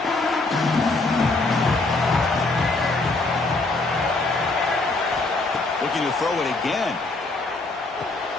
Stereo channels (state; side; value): quieter; right; 3.3 dB